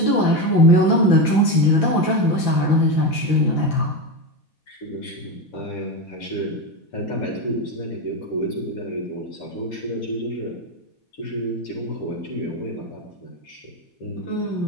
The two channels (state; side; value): late; right; 4.2 ms